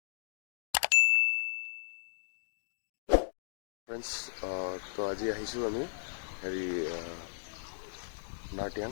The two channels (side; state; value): right; silent; digital silence